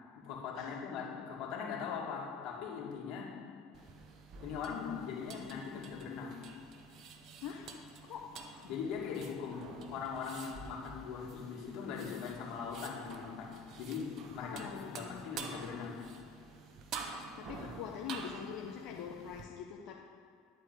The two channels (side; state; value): right; quieter; 4.4 dB